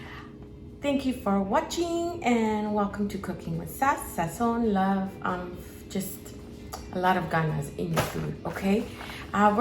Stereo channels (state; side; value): identical; both; correlation 1.00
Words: Thank you for watching and welcome to Cooking with Sass, Sazon, love, just a lot of ganas in your food, okay?